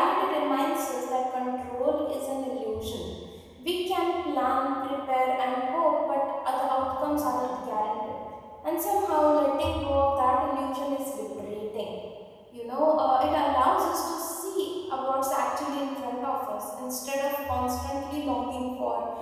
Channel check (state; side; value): identical; both; correlation 1.00